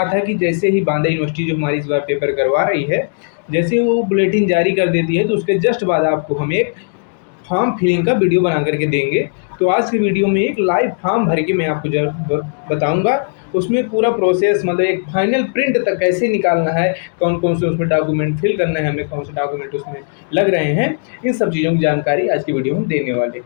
था कि जैसे ही बांदा यूनिवर्सिटी जो हमारी इस बार पेपर करवा रही है, जैसे ही वो बुलेटिन जारी कर देती है तो उसके जस्ट बाद आपको हम एक फॉर्म फिलिंग का वीडियो बना करके देंगे। तो आज की वीडियो में एक लाइव फॉर्म भर के मैं आपको बताऊंगा, उसमें पूरा प्रोसेस मतलब एक फाइनल प्रिंट तक कैसे निकालना है, कौन कौन से उसमें डॉक्यूमेंट फिल करना है, हमें कौन से डॉक्यूमेंट उसमें लग रहे हैं, इन सब चीज़ों की जानकारी आज की वीडियो में देने वाले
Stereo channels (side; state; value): right; silent; digital silence